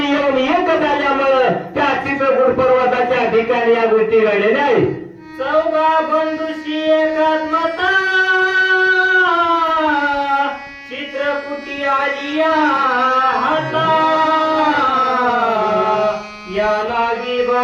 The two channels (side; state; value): both; identical; correlation 1.00